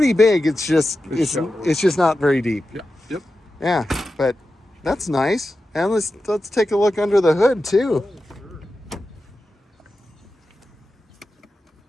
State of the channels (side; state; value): both; normal; correlation 0.92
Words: big. It's just not very deep. Yeah. Yep. Yeah, but that's nice. And let's take a look under the hood too.